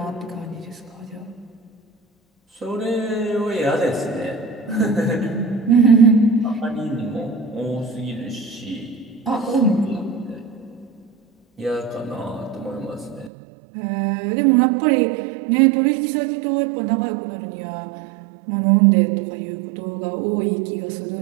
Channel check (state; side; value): drops out; left; at 13.3 s